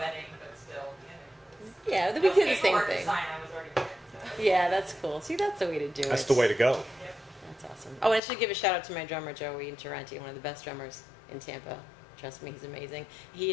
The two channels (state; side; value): drops out; right; at 8.2 s